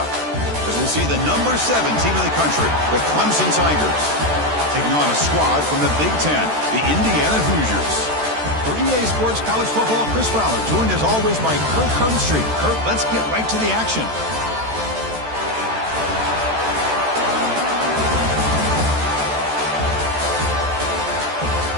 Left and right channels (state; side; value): late; left; 13 ms